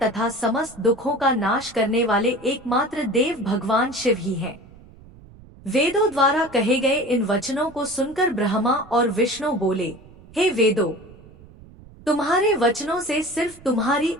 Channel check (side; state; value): right; noise; rumble, 22 dB below the sound